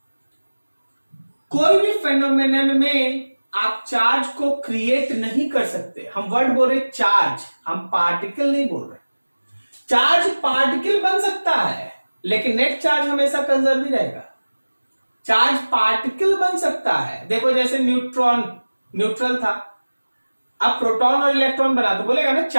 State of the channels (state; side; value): inverted; both; correlation -1.00